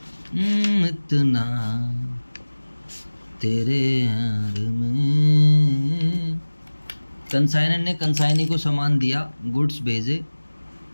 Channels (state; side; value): inverted; both; correlation -1.00